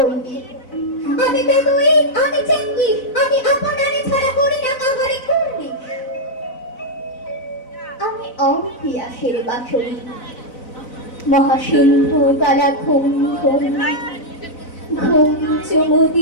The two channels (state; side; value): late; right; 4.0 ms